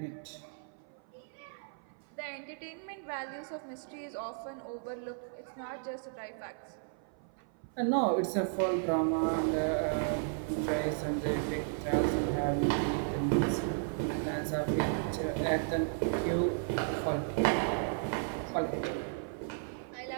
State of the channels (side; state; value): left; silent; 55 dB below the other